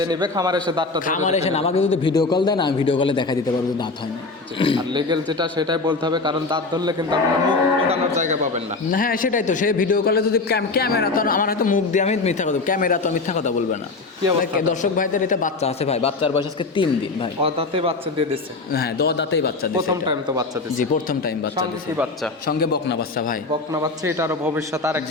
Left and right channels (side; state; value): right; quieter; 3.7 dB